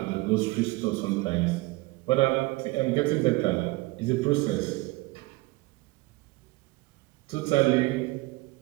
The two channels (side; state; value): left; quieter; 22.4 dB